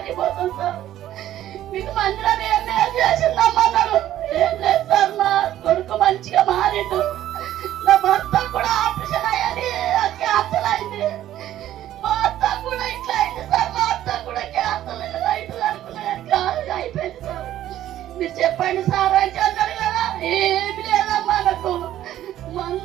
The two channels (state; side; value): quieter; left; 12.7 dB